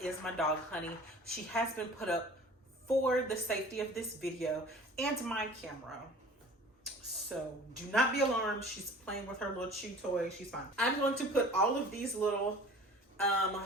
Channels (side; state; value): both; normal; correlation 0.45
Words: is my dog Honey. She has been put up for the safety of this video and my camera. So do not be alarmed. She's playing with her little chew toy. She's fine. I'm going to put all of these little